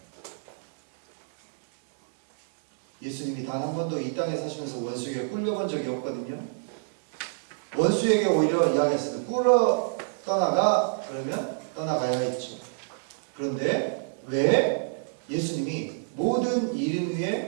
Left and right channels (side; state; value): left; silent; digital silence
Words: 예수님이 단 한 번도 이 땅에 사시면서 원수에게 꿀려본 적이 없거든요. 원수에게 오히려 이야기했어요. 꿀러 떠나가 그러면 떠나가야 했죠. 그런데 왜 예수님이 모든 이름